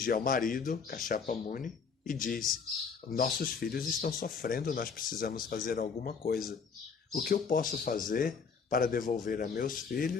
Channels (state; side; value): quieter; right; 5.7 dB